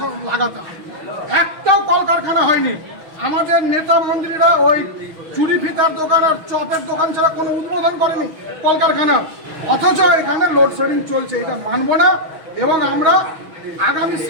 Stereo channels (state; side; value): late; left; 6.2 ms